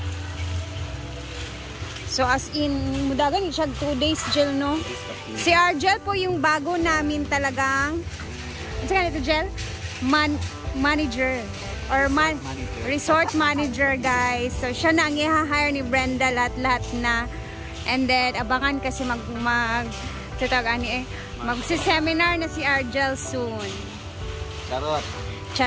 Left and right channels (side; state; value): both; identical; correlation 1.00